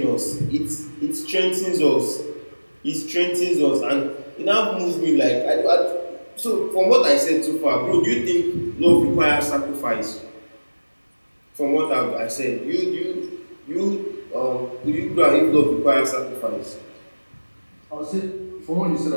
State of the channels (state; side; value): inverted; both; correlation -1.00